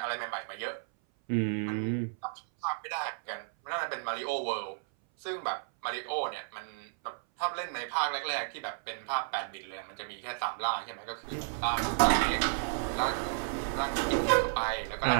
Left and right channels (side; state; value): left; silent; 56 dB below the other